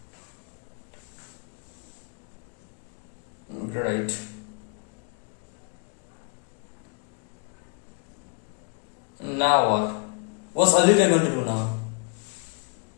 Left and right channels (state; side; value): quieter; right; 39.5 dB